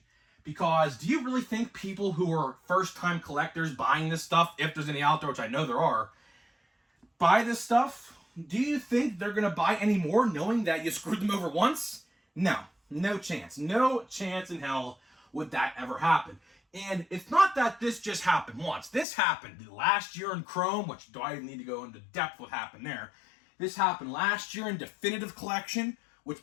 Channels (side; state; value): right; drops out; at 19.1 s